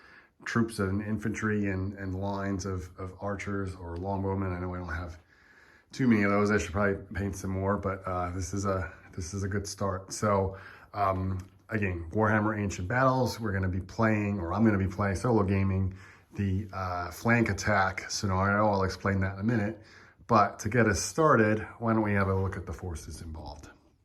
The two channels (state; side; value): identical; both; correlation 1.00